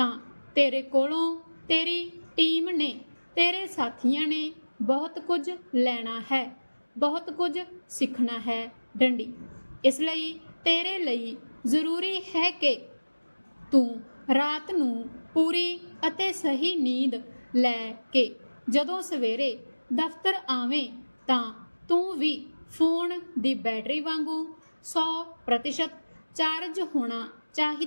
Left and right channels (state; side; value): inverted; both; correlation -1.00